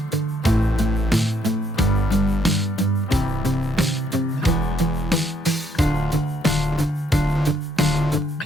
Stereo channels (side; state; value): both; normal; correlation 0.71